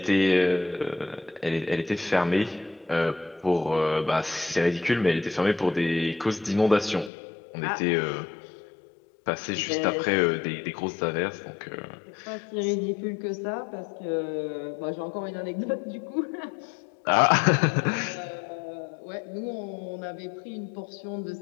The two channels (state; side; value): drops out; right; at 7.1 s